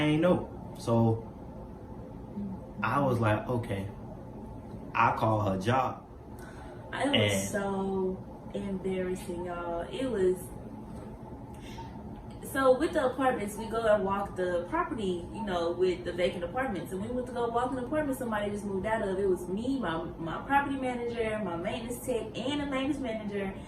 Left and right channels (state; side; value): identical; both; correlation 1.00